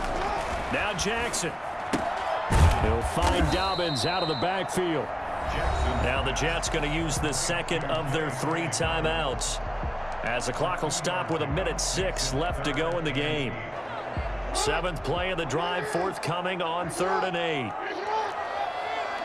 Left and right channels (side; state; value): both; identical; correlation 1.00